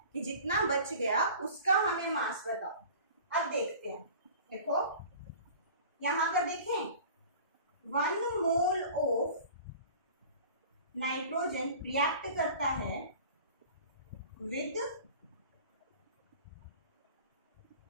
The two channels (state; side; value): inverted; both; correlation -0.42